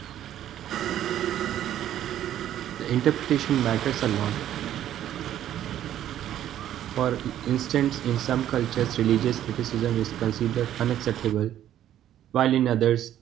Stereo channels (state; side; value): quieter; left; 11.5 dB